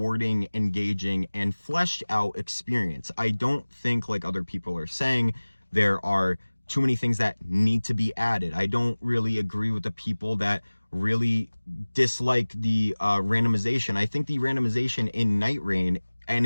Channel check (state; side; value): inverted; both; correlation -1.00